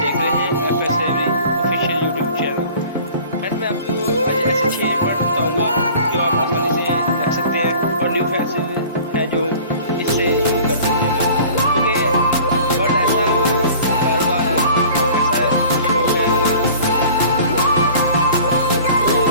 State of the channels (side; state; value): both; inverted; correlation -0.46